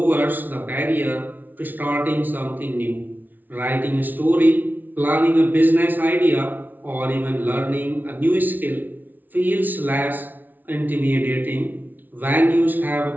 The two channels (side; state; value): left; late; 0.084 ms